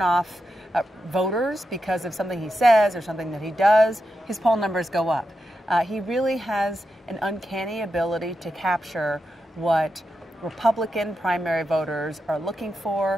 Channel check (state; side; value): normal; both; correlation 0.87